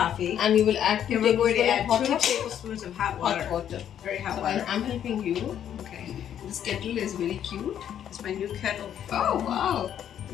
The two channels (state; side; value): quieter; right; 9.9 dB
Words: And you will add 2 And we're going to add hot 2 water? tablespoons of hot water. Hot water. Very hot So water. I'm helping you. Okay. This kettle is very cute. It's my new kettle. Oh wow!